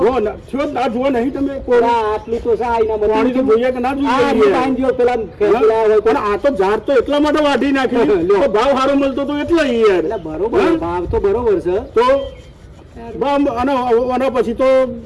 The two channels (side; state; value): both; identical; correlation 1.00